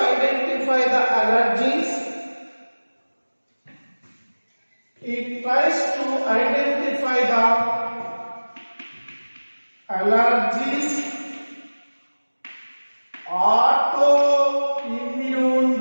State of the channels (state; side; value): inverted; both; correlation -1.00